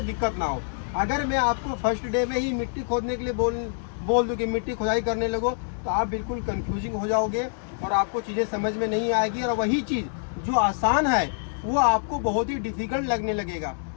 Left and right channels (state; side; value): silent; right; digital silence